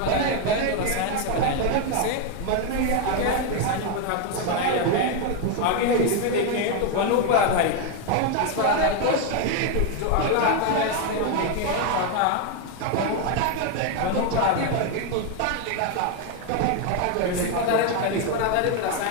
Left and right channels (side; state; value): both; different; correlation 0.01